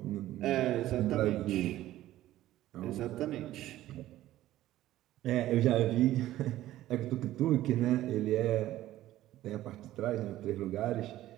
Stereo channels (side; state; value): left; quieter; 14.5 dB